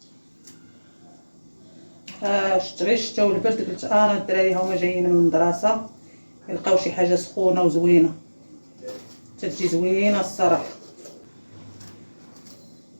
شت غير الشتا والبرد قلت انا الدراري هما جايين من المدرسه يلقاو شي حاجه سخونه وزوينه، تجي زوينه الصراحه.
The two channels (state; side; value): inverted; both; correlation -1.00